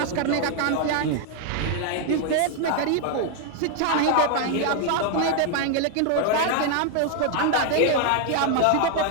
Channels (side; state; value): both; different; correlation 0.00